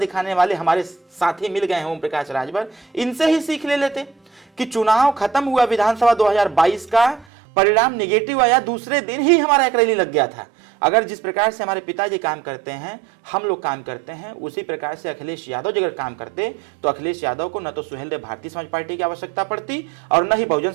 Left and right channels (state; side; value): drops out; left; at 7.2 s